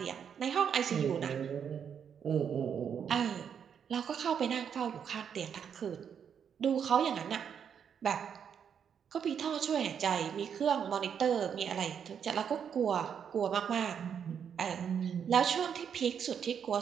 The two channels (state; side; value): quieter; left; 7.7 dB